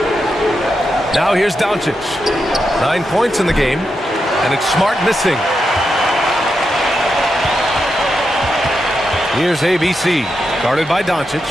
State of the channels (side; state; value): both; normal; correlation 0.86